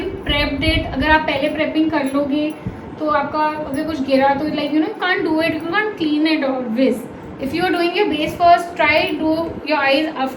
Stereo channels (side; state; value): both; identical; correlation 1.00